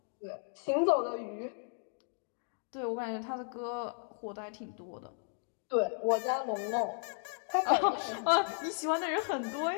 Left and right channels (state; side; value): silent; right; 55 dB below the other